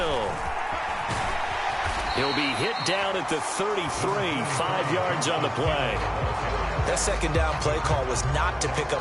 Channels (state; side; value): identical; both; correlation 1.00